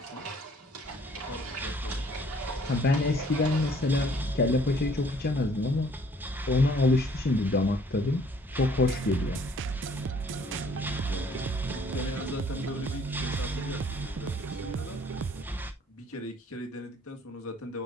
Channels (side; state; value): both; normal; correlation 0.59